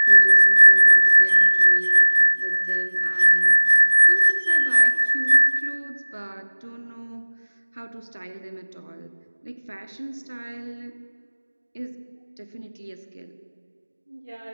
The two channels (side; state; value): both; inverted; correlation -1.00